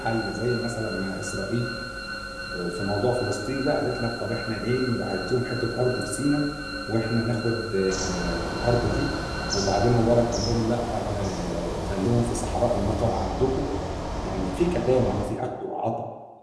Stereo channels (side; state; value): both; identical; correlation 1.00